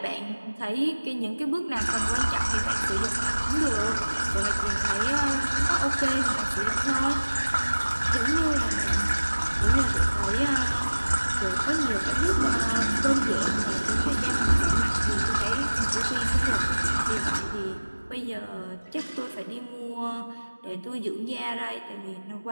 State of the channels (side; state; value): both; inverted; correlation -1.00